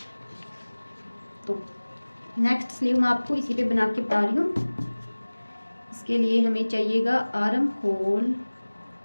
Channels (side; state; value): both; inverted; correlation -1.00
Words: तो नेक्स्ट स्लीव मैं आपको इसी पे बना के बता रही हूँ। इसके लिए हमें चाहिएगा आर्म होल,